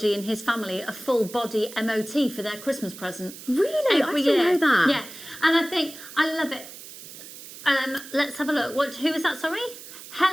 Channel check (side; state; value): right; noise; hiss, 15 dB below the sound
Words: in his family a full body MOT for their Christmas present. Really? Every I didn't year. know that. Yeah, and I think, I love it. Let's have a look. Who was that, sorry?